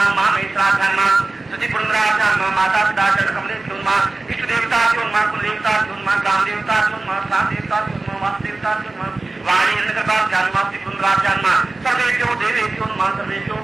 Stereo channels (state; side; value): quieter; left; 3.2 dB